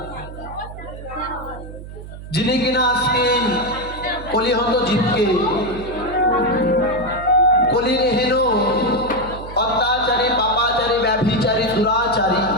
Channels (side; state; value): right; noise; hum, 13 dB below the sound